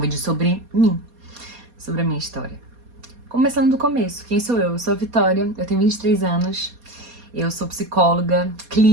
sobre mim, sobre a minha história. Começando do começo, quem sou eu? Eu sou a Vitória, eu tenho 23 anos, eu sou psicóloga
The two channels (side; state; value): left; late; 4.2 ms